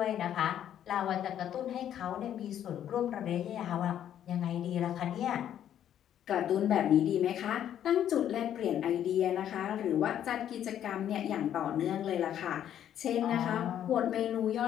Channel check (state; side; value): quieter; right; 10.4 dB